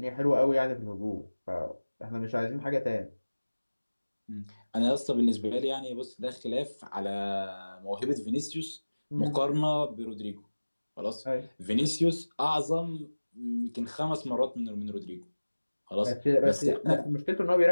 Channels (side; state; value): both; inverted; correlation -1.00